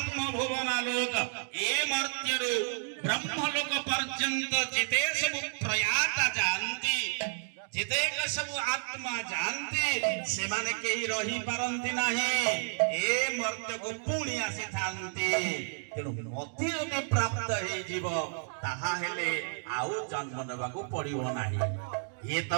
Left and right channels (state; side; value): silent; left; digital silence